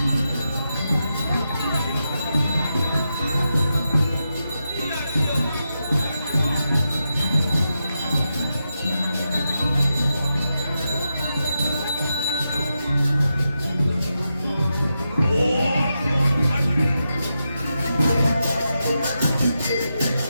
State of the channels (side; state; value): both; inverted; correlation -0.88